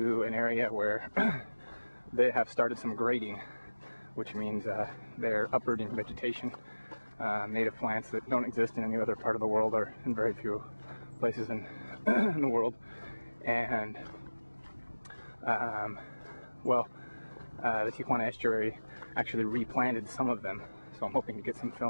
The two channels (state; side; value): inverted; both; correlation -1.00